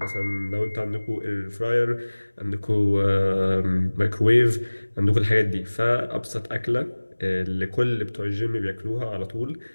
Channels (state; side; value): inverted; both; correlation -1.00